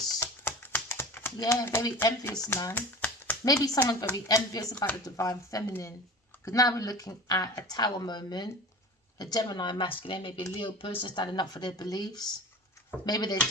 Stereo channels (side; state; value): both; normal; correlation 0.36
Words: Yeah, very envious, man. Maybe someone's very envious about the divine feminine. Because now we're looking at a Tower moment, a Gemini masculine, maybe a Leo person standing up for their beliefs. Maybe they're